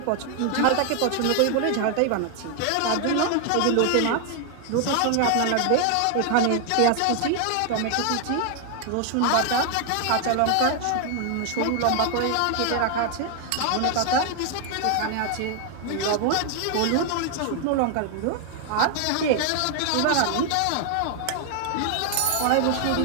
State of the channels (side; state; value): both; different; correlation 0.00